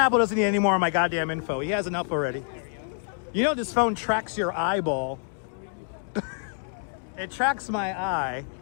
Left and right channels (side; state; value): right; silent; digital silence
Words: doesn't need any more of my goddamn info. He has enough already. You know this phone tracks your eyeball. It tracks my eye.